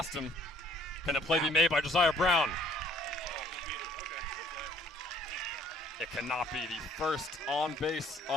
him. Can the play be made by Josiah Brown? It cannot be. The first on base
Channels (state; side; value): normal; both; correlation 0.59